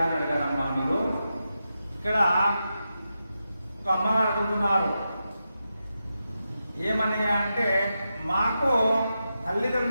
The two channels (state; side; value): inverted; both; correlation -0.88